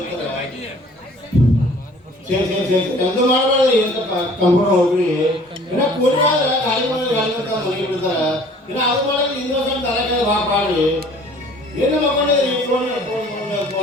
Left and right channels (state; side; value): normal; both; correlation 0.52